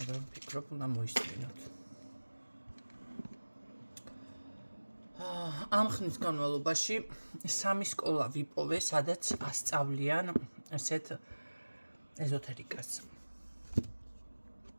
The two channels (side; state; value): both; inverted; correlation -1.00